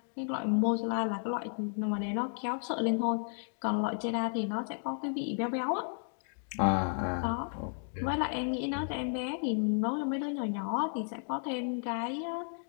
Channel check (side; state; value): right; silent; 56 dB below the other